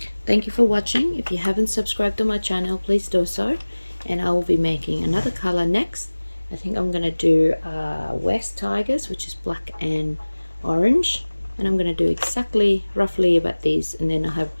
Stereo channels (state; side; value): inverted; both; correlation -1.00